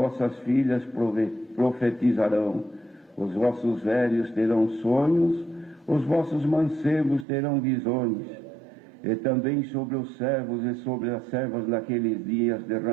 filhas profetizarão, os vossos velhos terão sonhos, os vossos mancebos terão visões, e também sobre os servos e sobre as servas naqueles dias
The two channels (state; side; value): drops out; left; at 7.2 s